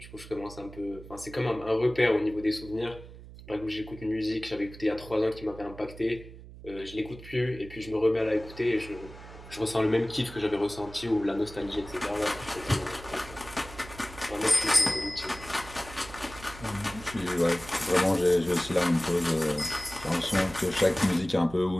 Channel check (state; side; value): noise; right; hum, 16 dB below the sound